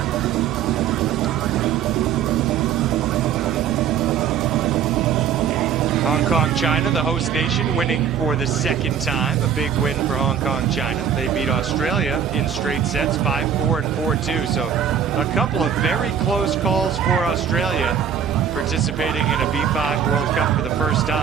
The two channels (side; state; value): left; quieter; 8.0 dB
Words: Hong Kong, China, the host nation, winning for the 2nd time. A big win for Hong Kong, China. They beat Australia in straight sets, 5-4 and 4-2. So a couple of very close calls for Australia, participating in a B5 World Cup for the first